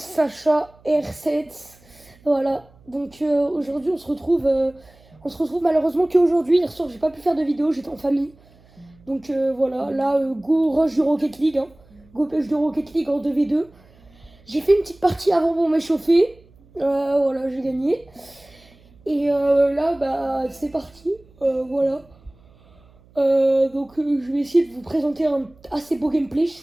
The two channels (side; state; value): right; noise; hum, 28 dB below the sound